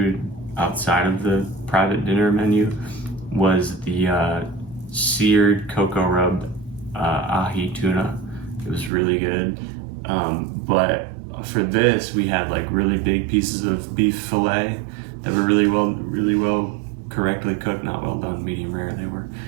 outside of the private dinner menu, was the seared cocoa rub ahi tuna. It was really good. But for this, we had like really big pieces of beef fillet that were really well correctly cooked, not well done, medium rare they were.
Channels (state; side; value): drops out; left; at 8.9 s